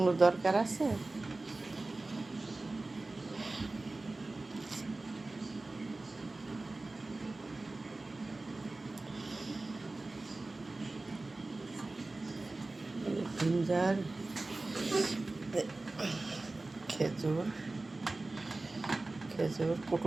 দরকার আছে? জিঞ্জার, খেজুর খেজুর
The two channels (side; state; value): left; quieter; 3.1 dB